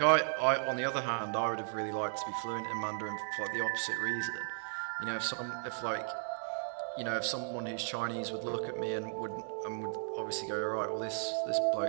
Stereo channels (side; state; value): left; silent; digital silence